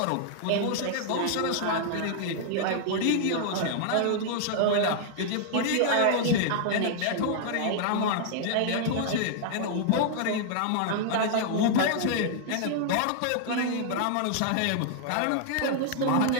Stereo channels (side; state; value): both; different; correlation -0.01